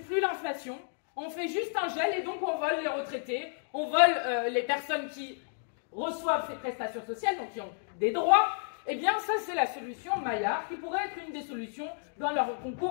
l'inflation, on fait juste un gel et donc on vole les retraités, on vole les personnes qui reçoivent ces prestations sociales, donc qui ont des droits. Eh bien, ça, c'est la solution Maillard, qui pourrait être une des solutions dans leur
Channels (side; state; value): right; silent; digital silence